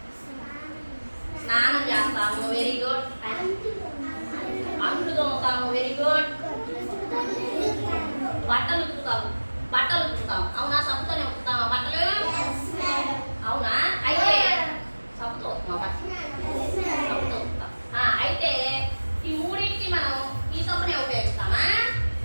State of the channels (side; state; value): both; inverted; correlation -1.00